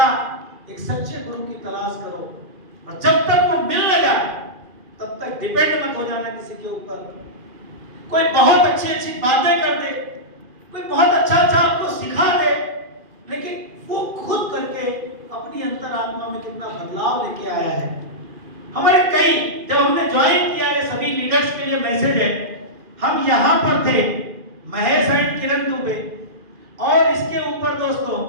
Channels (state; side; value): late; left; 2.4 ms